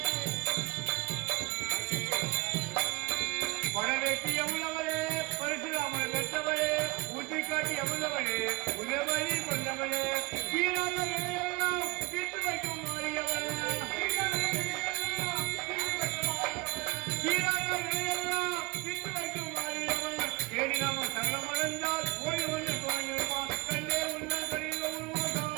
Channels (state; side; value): quieter; left; 25.0 dB